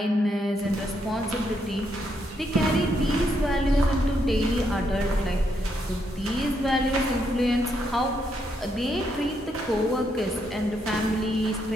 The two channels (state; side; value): normal; both; correlation 0.77